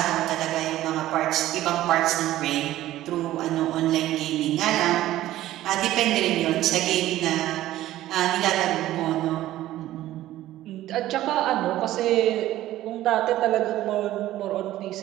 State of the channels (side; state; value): left; quieter; 14.5 dB